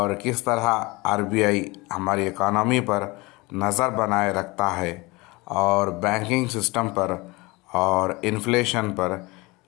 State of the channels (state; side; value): quieter; right; 23.9 dB